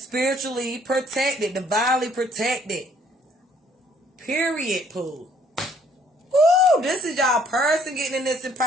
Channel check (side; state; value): both; normal; correlation 0.62